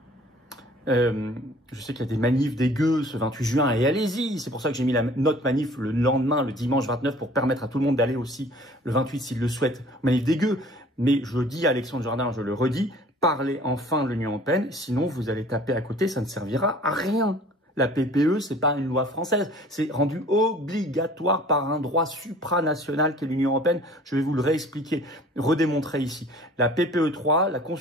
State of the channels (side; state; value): both; normal; correlation 0.50